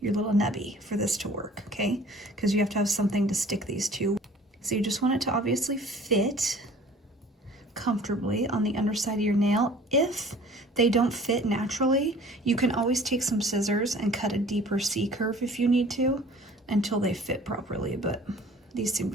your little nubby for this to work, okay? Because you have to have something to stick these to. So you just want it to obviously fit comfortably on the underside of your nail. If they don't fit naturally, you can always take some scissors and cut a deeper C curve if you need to until they fit properly, but these seem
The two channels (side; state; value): both; normal; correlation 0.49